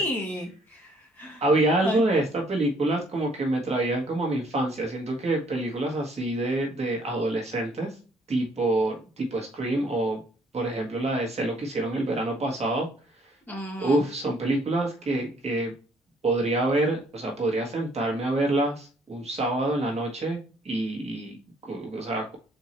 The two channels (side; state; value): both; normal; correlation 0.64